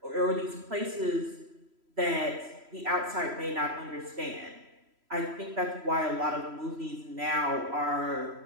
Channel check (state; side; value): late; left; 3.0 ms